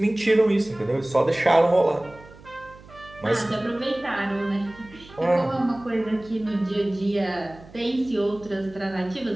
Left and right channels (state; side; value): noise; right; hum, 21 dB below the sound